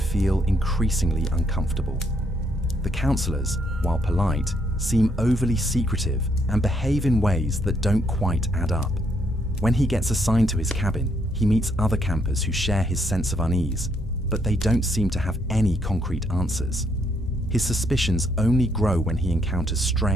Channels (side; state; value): both; normal; correlation 0.73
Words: increasingly uncomfortable. The counselors, while polite, seem overly secretive and behave in ways that don't quite add up. When he gets assigned to his cabin, he meets other campers who share his sense of unease, but they don't seem to have any concrete answers. His suspicions only grow when he encounters